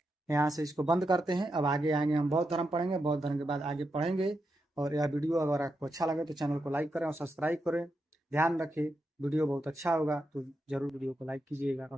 यहाँ से इसको बंद करते हैं। अब आगे आएंगे, हम बौद्ध धर्म पढ़ेंगे। बौद्ध धर्म के बाद आगे पढ़ेंगे। और यह वीडियो अगर आपको अच्छा लगे तो चैनल को लाइक करें और सब्सक्राइब करें। ध्यान रखें, वीडियो बहुत अच्छा होगा तो जरूर वीडियो को लाइक कीजिएगा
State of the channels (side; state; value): both; normal; correlation 0.86